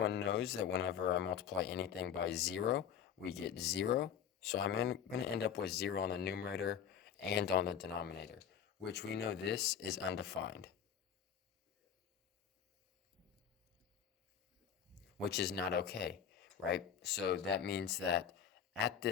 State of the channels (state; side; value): quieter; right; 8.4 dB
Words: knows that whenever I multiply anything by 0, we get 0. So I'm going to end up with 0 on the numerator and on the denominator, which we know this is undefined, which is not okay, right? So that means that at